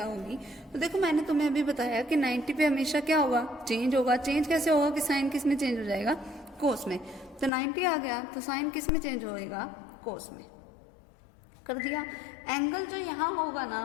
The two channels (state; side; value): drops out; right; at 7.5 s